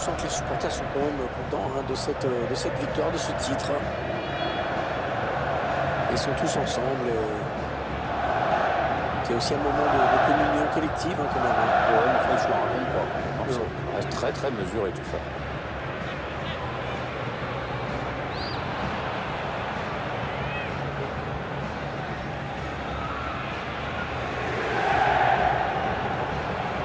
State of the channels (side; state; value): both; identical; correlation 1.00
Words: que les supporters sont quand même contents de cette victoire, de ce titre. Ils sont tous ensemble. C'est aussi un moment de communion collective quand même. Ouais, mais enfin, ils se le racontent pas. Ça reste très très mesuré tout ça.